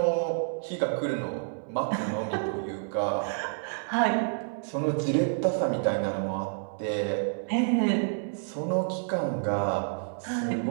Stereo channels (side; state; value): left; silent; digital silence